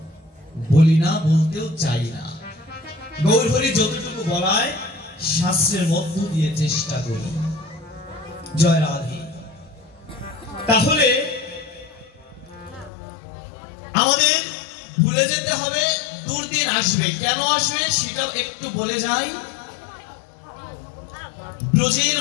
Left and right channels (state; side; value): drops out; right; at 12.9 s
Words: বলি না, বলতেও চাই না। গৌর হরি যতটুকু বলায় শাস্ত্রের মধ্য দিয়ে চেষ্টা করি। জয় রাধে। তাহলে আমাদের ভুলে যেতে হবে, দুর্দিন আসবে। কেন আসবে সেটাও একটু বলে যাই। ব্রজের